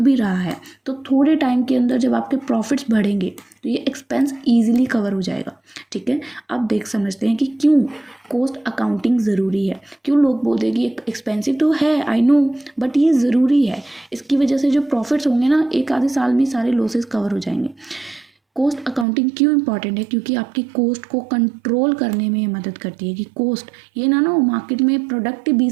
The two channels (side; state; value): left; drops out; at 19.1 s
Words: रहा है तो थोड़े टाइम के अंदर जब आपके प्रॉफिट्स बढ़ेंगे तो ये एक्सपेंस ईजिली कवर हो जाएगा। ठीक है, अब देख समझते हैं कि क्यों कॉस्ट अकाउंटिंग ज़रूरी है। क्यों लोग बोलते हैं कि एक्सपेंसिव तो है, आई नो, बट ये ज़रूरी है। इसकी वजह से जो प्रॉफिट्स होंगे ना, एक आधे साल में सारे लॉसेस कवर हो जाएंगे। कॉस्ट अकाउंटिंग क्यों इंपॉर्टेंट है? क्योंकि आपकी कॉस्ट को कंट्रोल करने में मदद करती है। कि कॉस्ट ये ना मार्केट में प्रोडक्ट ही